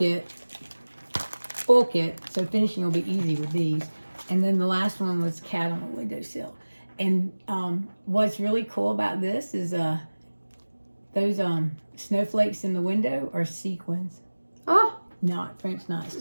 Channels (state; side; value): inverted; both; correlation -1.00